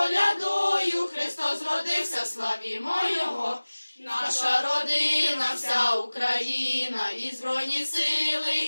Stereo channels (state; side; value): inverted; both; correlation -1.00